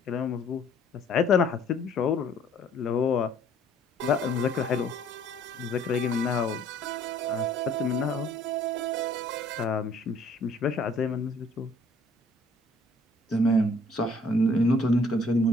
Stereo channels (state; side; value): normal; both; correlation 0.58